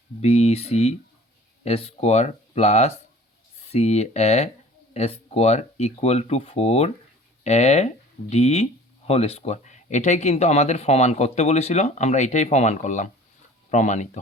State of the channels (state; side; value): normal; both; correlation 0.47